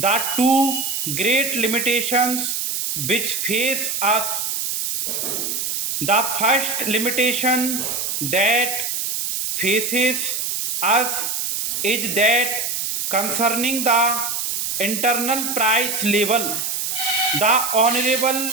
two great limitations which face us. The first limitation that faces us is that concerning the internal price level, the Honorable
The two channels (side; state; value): right; noise; hiss, 1 dB below the sound